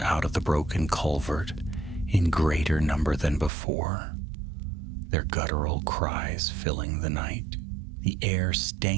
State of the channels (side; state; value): left; drops out; at 3.5 s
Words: of the broken culvert in greater number than before, their guttural cries filling the night. The air